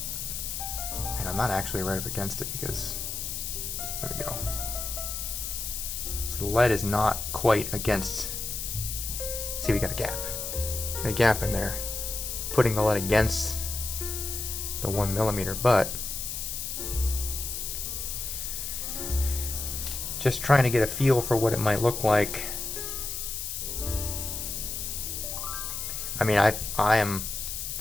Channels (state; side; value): noise; left; hiss, 4 dB below the sound